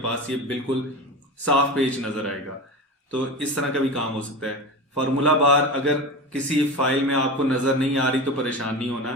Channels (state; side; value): normal; both; correlation 0.26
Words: ये बिल्कुल साफ पेज नजर आएगा। तो इस तरह का भी काम हो सकता है। फार्मूला बार अगर किसी फाइल में आपको नजर नहीं आ रही तो परेशान नहीं होना,